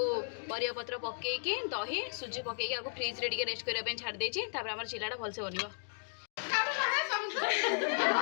परिवापत्र पकईकी दही सुजी पकईकी आपको फ्रिज रे रेस्ट करने छाड़ देती आम चिल्लाटा भलसे बनवा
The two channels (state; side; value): silent; right; digital silence